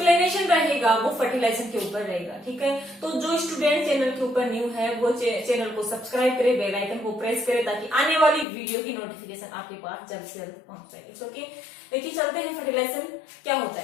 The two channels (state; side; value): drops out; right; at 8.5 s